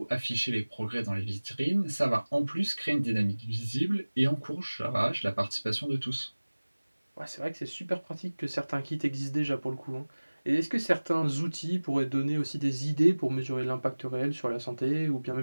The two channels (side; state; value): both; inverted; correlation -1.00